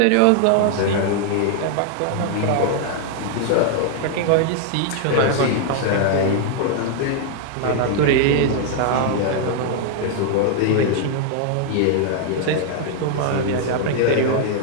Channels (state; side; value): different; both; correlation 0.00